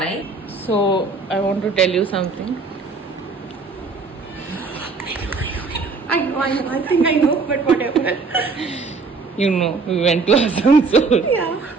So I want to tell you something. I think I know, but whatever. You know, we went to Asansol. Yeah.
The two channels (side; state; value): left; quieter; 4.2 dB